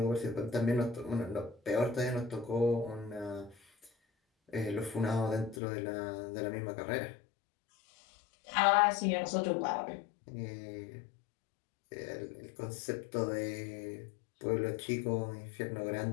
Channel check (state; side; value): drops out; right; at 5.6 s